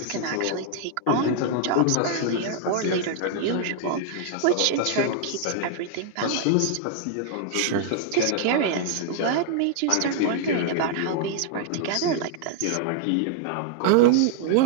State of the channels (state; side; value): different; both; correlation 0.00